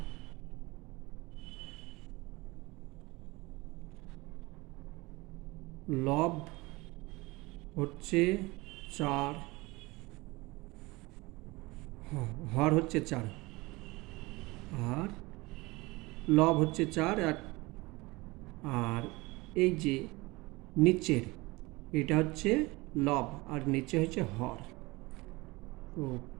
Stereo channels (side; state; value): left; quieter; 22.8 dB